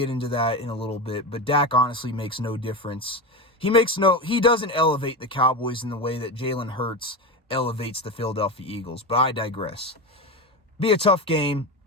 into that in a little bit. But Dak honestly makes no difference. He doesn't elevate the Cowboys in the way that Jalen Hurts elevates the Philadelphia Eagles. But I digress. Be a tough game.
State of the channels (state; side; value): normal; both; correlation 0.20